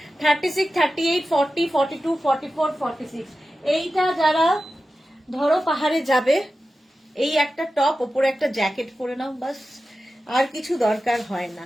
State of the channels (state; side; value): normal; both; correlation 0.93